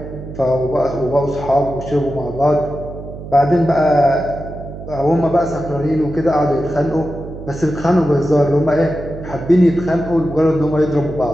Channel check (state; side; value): noise; right; hum, 12 dB below the sound